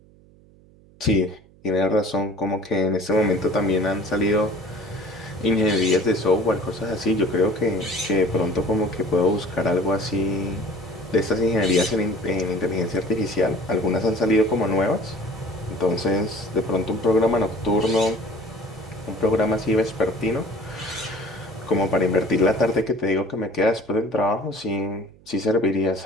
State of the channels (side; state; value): right; noise; hum, 27 dB below the sound